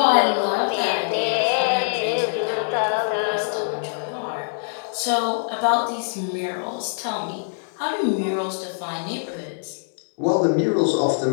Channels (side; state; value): right; silent; digital silence